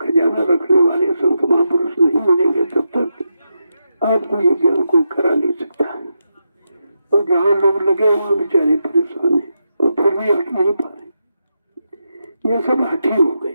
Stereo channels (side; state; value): both; inverted; correlation -0.86